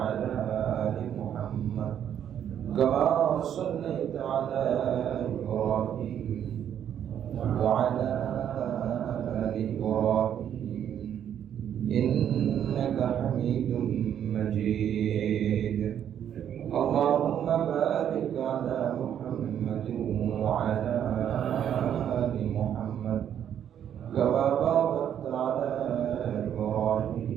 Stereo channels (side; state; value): left; quieter; 9.6 dB